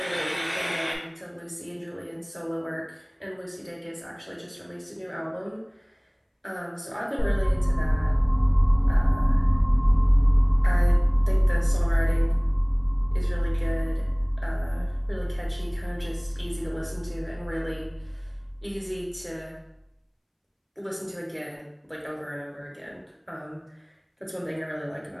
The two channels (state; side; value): identical; both; correlation 1.00